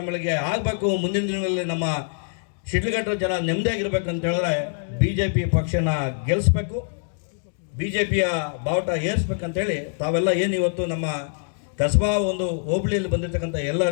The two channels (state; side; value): silent; right; digital silence